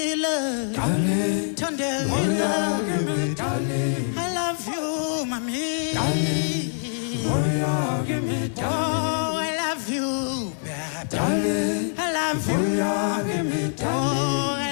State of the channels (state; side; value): silent; right; digital silence